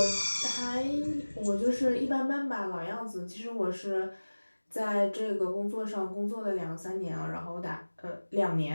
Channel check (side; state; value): both; inverted; correlation -1.00